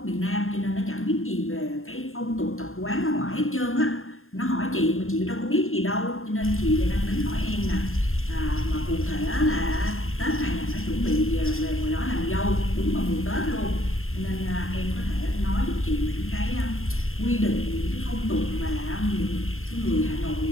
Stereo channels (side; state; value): right; late; 0.61 ms